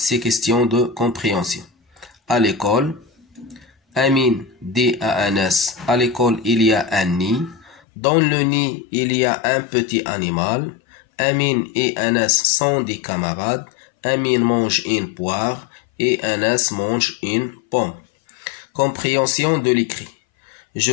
questions de compréhension. À l'école, Amine dit à Anas, à l'école il y a un nid. Dans le nid il y a un petit animal. Amine et Anas sont des camarades. Amine mange une poire et Anas mange une pomme. Compréhension de l'écrit. Je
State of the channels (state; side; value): drops out; right; at 7.8 s